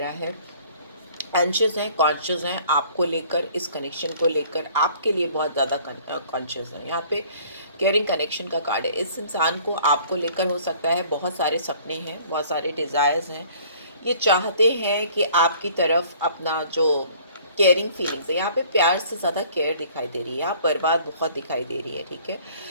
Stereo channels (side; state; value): both; inverted; correlation -0.54